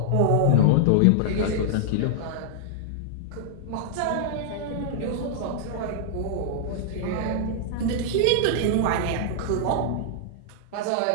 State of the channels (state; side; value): different; both; correlation -0.01